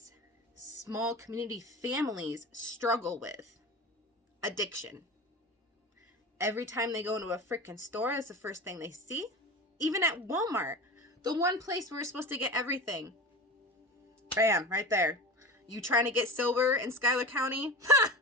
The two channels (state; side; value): normal; both; correlation 0.31